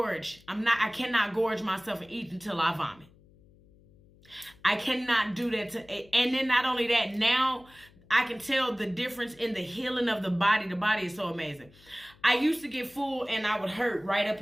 I cannot gorge myself and eat until I vomit. I cannot do that and then not only that, now I can tell the difference in the healing of the body. The body is so amazing. I used to get full and I would hurt right up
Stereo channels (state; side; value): noise; left; hum, 27 dB below the sound